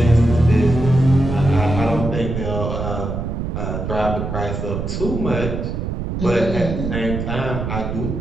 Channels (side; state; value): right; noise; rumble, 4 dB below the sound